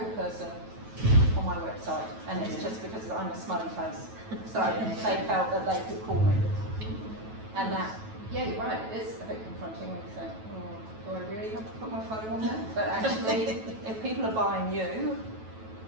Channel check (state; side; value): late; left; 9.2 ms